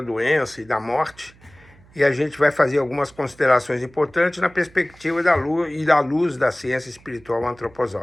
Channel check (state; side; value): noise; right; hum, 27 dB below the sound